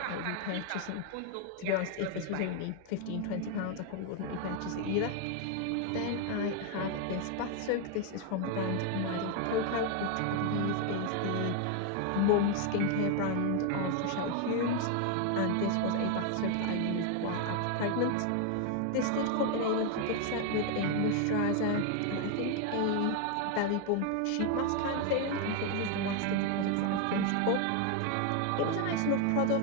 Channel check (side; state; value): both; different; correlation 0.01